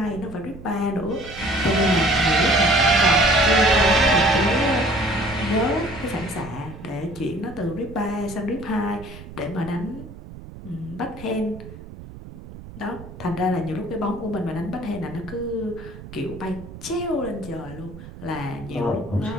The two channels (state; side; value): noise; right; rumble, 15 dB below the sound